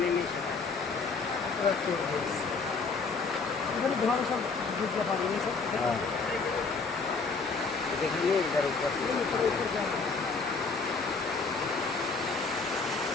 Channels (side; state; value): right; quieter; 4.4 dB